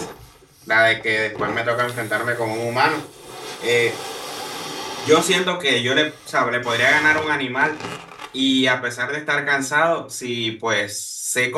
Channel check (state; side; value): identical; both; correlation 1.00